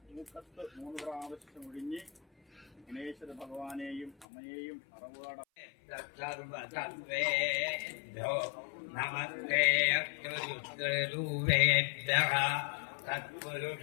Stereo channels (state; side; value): drops out; right; at 4.2 s